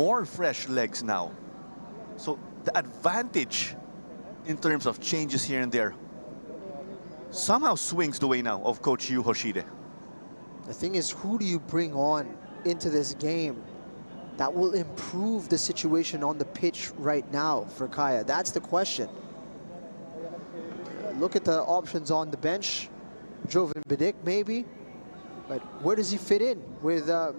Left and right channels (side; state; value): both; inverted; correlation -1.00